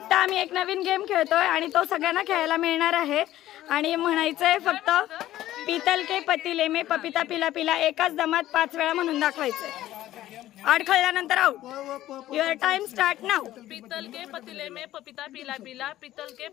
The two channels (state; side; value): quieter; right; 14.2 dB